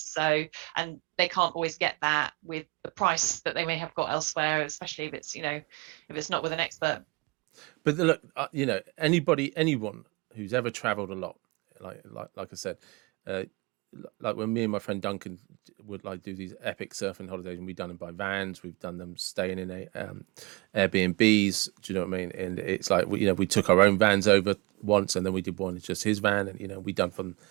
So, and they can't always get that with the price that they may have got elsewhere, especially if it's not with an expert. look, anyone who's ever travelled a lot, like I said, uh, like when me and my friend Duncan would like do these epic surfing holidays, and we've done them by vans, we've done them staying in Airbnbs. Do you know what I mean? And it's like we took our own vans over once, and then we did one just his van, and we done from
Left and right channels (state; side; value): quieter; left; 26.2 dB